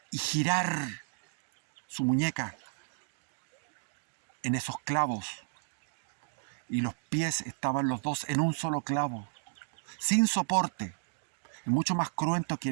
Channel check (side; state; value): left; silent; digital silence